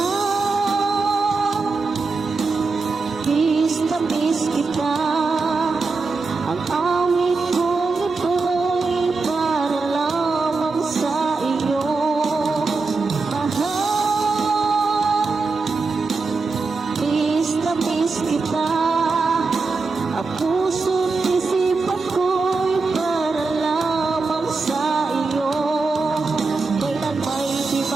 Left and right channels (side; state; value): left; quieter; 4.1 dB